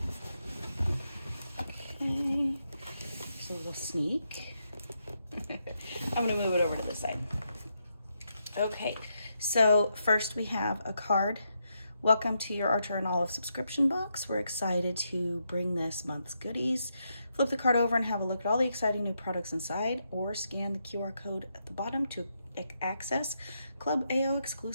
Okay, just a little sneak. I'm gonna move it over to this side. Okay, so first we have a card. Welcome to your Archer and Olive subscription box. We're excited to bring this month's goodies. Flip the card over and have a look at all the exciting new products inside, or scan the QR code at the bottom to access Club AO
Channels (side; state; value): both; inverted; correlation -0.81